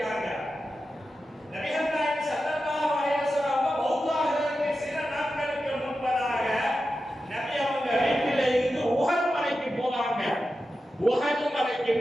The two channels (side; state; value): both; normal; correlation 0.91